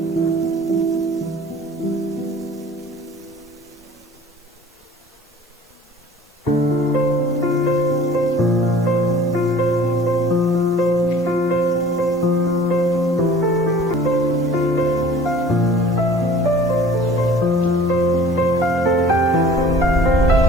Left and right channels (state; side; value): normal; both; correlation 0.48